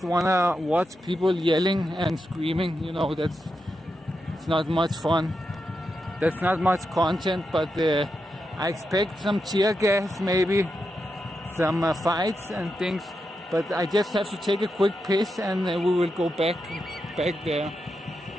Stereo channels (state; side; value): normal; both; correlation 0.87